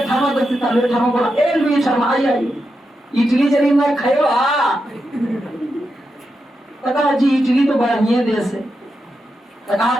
दोस्ती था। लुई 18वां बोला ए लुई 18वां आई इटली जरी मैं खायो कहा जी इटली तो बढ़िया देश है। कहा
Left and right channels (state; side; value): normal; both; correlation 0.87